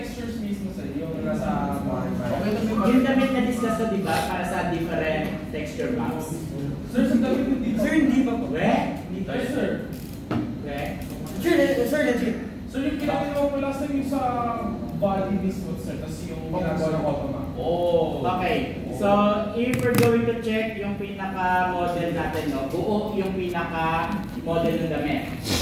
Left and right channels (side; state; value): both; identical; correlation 1.00